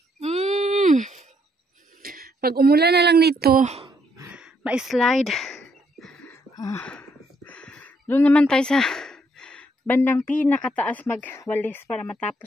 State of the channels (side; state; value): both; normal; correlation 0.72